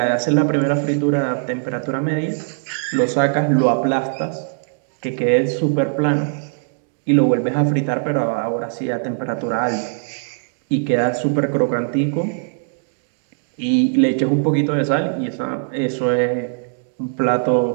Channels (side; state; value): left; silent; digital silence